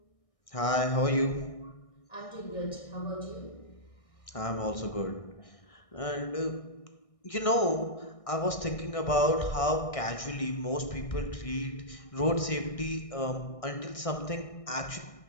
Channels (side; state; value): right; late; 1.6 ms